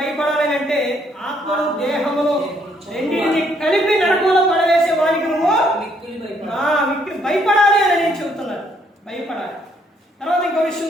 అంటే ఆత్మను దేహమును రెండింటిని కలిపి నరకంలో పడవేసే వారికి నువ్వు భయపడాలి అని నేను చెబుతున్నాను. భయపడాలి. తర్వాత ఇంకో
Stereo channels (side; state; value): both; normal; correlation 0.69